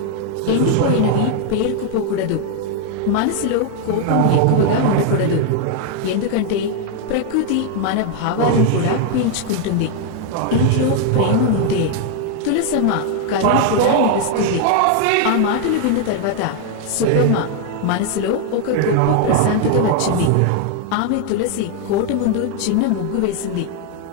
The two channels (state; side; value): different; both; correlation 0.00